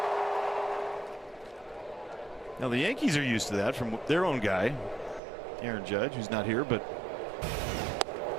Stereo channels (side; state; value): left; drops out; at 5.2 s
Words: Now the Yankees are used to that from their own guy, Aaron Judge, who's not here, but